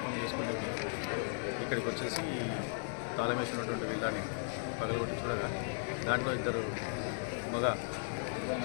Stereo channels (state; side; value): silent; right; 54 dB below the other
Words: చేసుకుని ఇక్కడికి వచ్చేసి తాళమేసినటువంటి విల్లాని పగలగొట్టి చూడగా దాంట్లో ఇద్దరు మగ